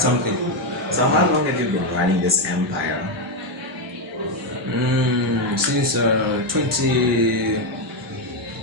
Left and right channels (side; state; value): both; normal; correlation 0.05